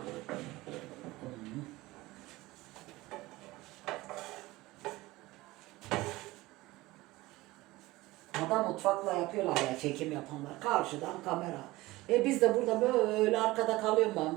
Adam mutfakla yapıyorlar ya çekim yapanlar. Karşıdan kamera. Biz de burada böyle arkada kalıyorum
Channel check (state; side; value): quieter; left; 19.4 dB